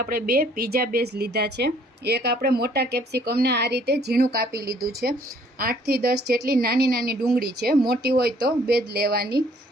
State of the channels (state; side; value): normal; both; correlation 0.61